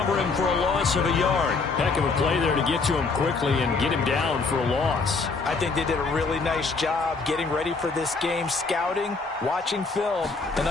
him for a loss of a yard. Heck of a play there to get to him quickly and get him down for a loss. I think they did a really nice job getting ready for this game, scouting, watching film, and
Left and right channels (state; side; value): quieter; right; 4.2 dB